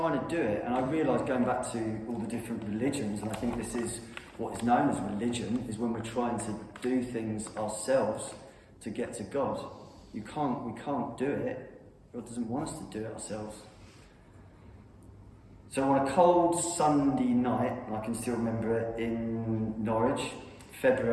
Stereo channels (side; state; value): both; identical; correlation 1.00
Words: to do it, and I realised, going back to all the different religions, and I think this is what is known as religion, is when we're trying to do things ourselves to get to God. We can't do it. God doesn't want us to do it ourselves. So on a cold Sunday night, and I can still remember it, in Norwich,